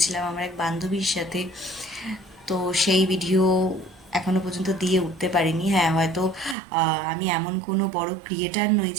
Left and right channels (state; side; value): drops out; left; at 6.6 s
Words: আমার এক বান্ধবীর সাথে। তো সেই ভিডিও এখনো পর্যন্ত দিয়ে উঠতে পারিনি। হ্যাঁ, হয়তো আমি এমন কোনো বড় ক্রিয়েটার নই